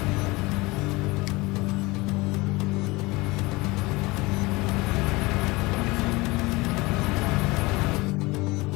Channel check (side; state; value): right; quieter; 22.8 dB